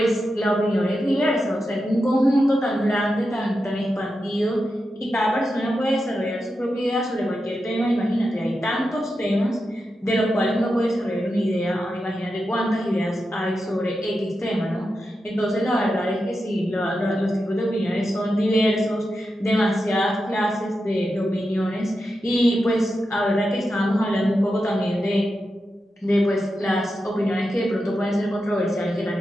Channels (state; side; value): normal; both; correlation 0.89